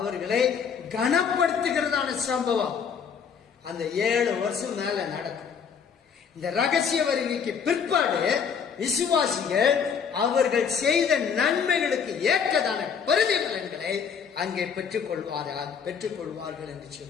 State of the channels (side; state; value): right; quieter; 6.8 dB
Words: கனப்படுத்துகிறதான சம்பவம் அந்த 7 வருஷம் மேல நடக்கும். இந்த ரகசிய வருகைக்கு பிற்பாடு விசுவாசிகள் அவர்கள் செய்த நன்மைகளுக்கு ஏற்றதான பிரதிபலன்களை அங்கே பெற்றுக்கொள்வார்கள் என்று